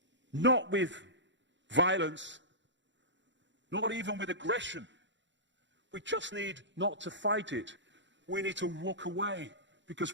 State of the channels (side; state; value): left; late; 0.53 ms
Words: Not with violence, not even with aggression. We just need not to fight it. We need to walk away,